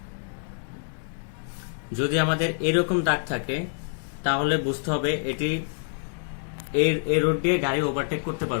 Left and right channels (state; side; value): silent; right; digital silence